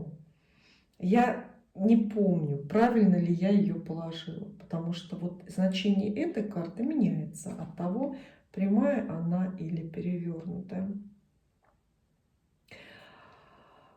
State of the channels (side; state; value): both; identical; correlation 1.00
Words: я не помню, правильно ли я ее положила, потому что вот значение этой карты меняется от того, прямая она или перевернутая.